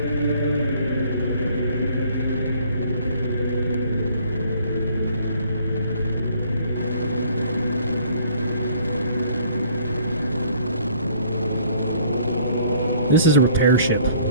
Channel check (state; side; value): inverted; both; correlation -0.58